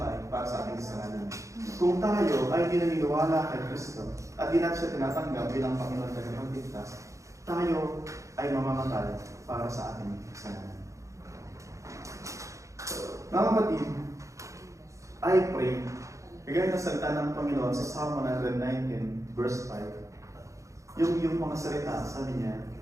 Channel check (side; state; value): left; late; 0.15 ms